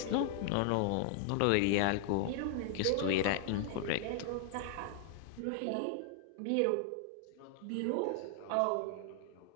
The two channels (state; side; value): different; both; correlation 0.00